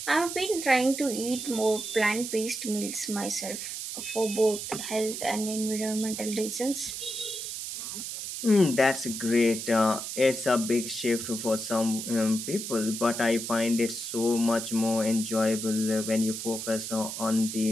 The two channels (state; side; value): noise; right; hiss, 6 dB below the sound